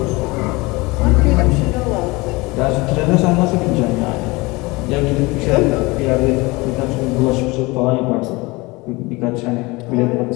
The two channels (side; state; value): right; quieter; 23.8 dB